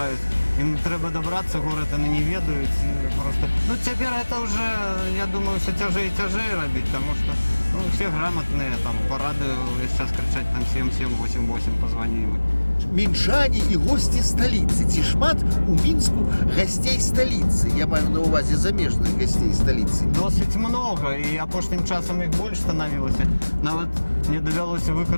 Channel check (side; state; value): both; inverted; correlation -1.00